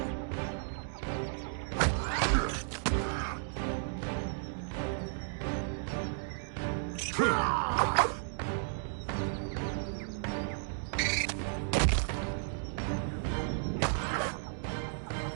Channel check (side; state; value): left; silent; digital silence